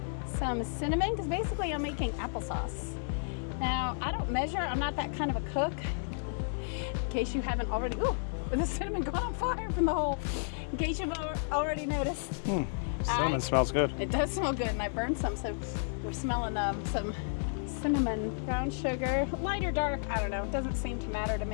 some cinnamon, because basically I'm making applesauce. Now, I don't measure. I'm not that kind of a cook. In case you haven't already, ooh, the cinnamon got on fire from the hole. In case you've already noticed. Cinnamon smells good. It does smell good, and I burned some, so we're smelling some cinnamon, brown sugar, light or dark, I don't know. It doesn't seem to matter to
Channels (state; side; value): silent; right; digital silence